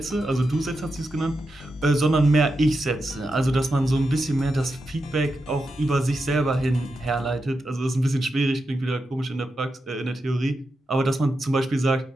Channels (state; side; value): normal; both; correlation 0.88